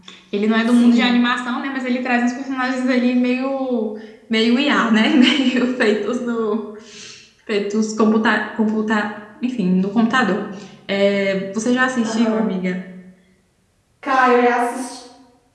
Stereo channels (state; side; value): identical; both; correlation 1.00